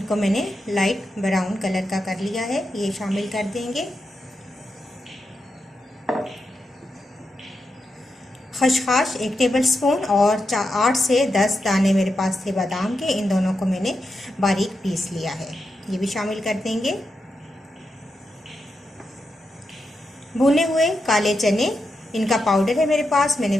मैंने लाइट ब्राउन कलर का कर लिया है, ये शामिल कर देंगे। खसखस 1 टेबलस्पून और 8 से 10 दाने मेरे पास थे बादाम के, इन दोनों को मैंने बारीक पीस लिया है, ये भी शामिल कर देंगे। भुने हुए काले चने, इनका पाउडर है मेरे पास, मैंने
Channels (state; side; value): normal; both; correlation 0.87